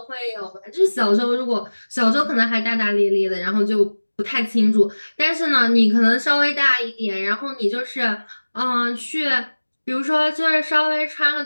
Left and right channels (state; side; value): inverted; both; correlation -1.00